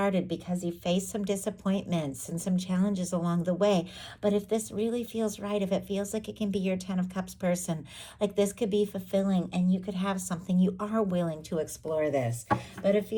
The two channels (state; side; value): identical; both; correlation 1.00